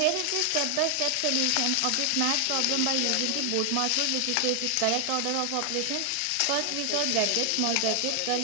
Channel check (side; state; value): both; different; correlation 0.00